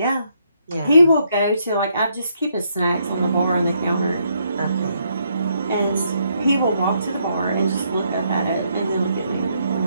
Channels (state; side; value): inverted; both; correlation -0.74